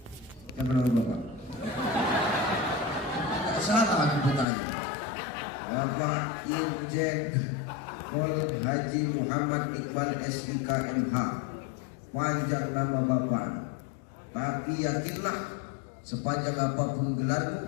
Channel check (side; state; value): right; drops out; at 4.5 s